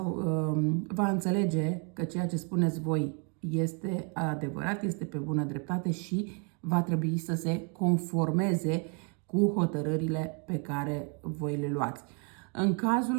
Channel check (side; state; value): left; quieter; 37.0 dB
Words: va înțelege că ceea ce spuneți voi este adevărat, este pe bună dreptate și va trebui să se conformeze cu hotărârile pe care voi le luați. În cazul